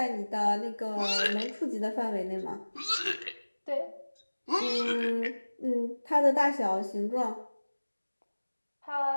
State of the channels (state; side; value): inverted; both; correlation -1.00